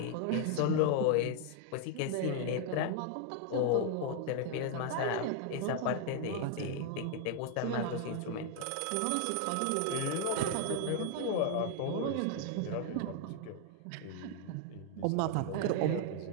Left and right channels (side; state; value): both; different; correlation 0.00